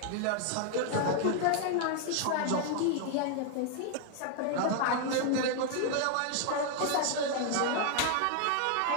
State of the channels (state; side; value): different; both; correlation 0.00